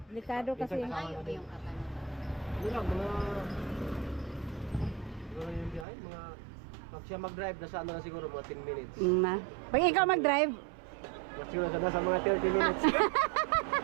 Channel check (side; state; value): left; drops out; at 5.9 s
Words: Delikado kasi. Layo ba yung kakano? Ano lang, pag siya mag-drive, nasa na siguro mga 10 minutes. Pag ikaw mag-drive, Siguro nasa mga 30 minutes.